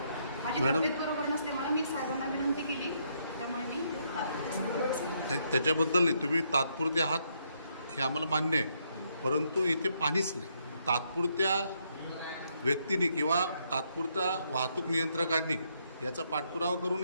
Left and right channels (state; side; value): inverted; both; correlation -0.74